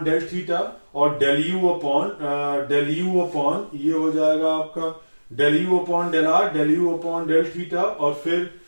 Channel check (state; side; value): inverted; both; correlation -1.00